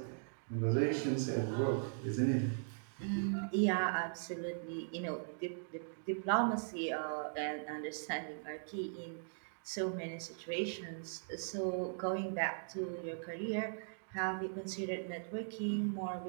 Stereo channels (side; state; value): left; silent; digital silence